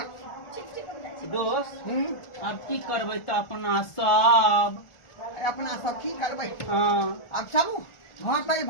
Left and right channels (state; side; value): late; right; 1.4 ms